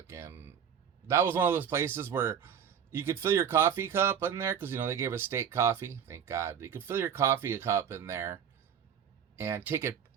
that was one of those places where you could fill your coffee cup in there, because, they gave us state coffee. Thank God. You could fill your coffee cup in there and take it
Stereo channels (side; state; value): left; quieter; 8.1 dB